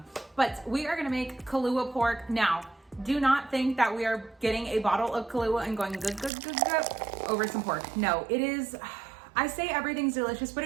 but we are gonna make Kalua pork. Now, do not think that we are getting a bottle of Kalua and going good over some pork. No, it is, I say everything's delicious, but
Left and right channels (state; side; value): drops out; left; at 6.3 s